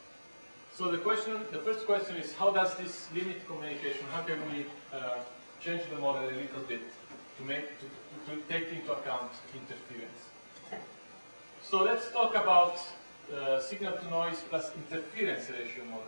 So the first question is, how does this limit communication? How can we change the model a little bit to take into account interference? So let's talk about signal to noise plus interference ratio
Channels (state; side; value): inverted; both; correlation -1.00